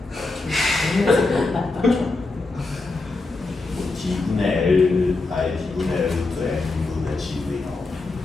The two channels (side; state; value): right; quieter; 3.4 dB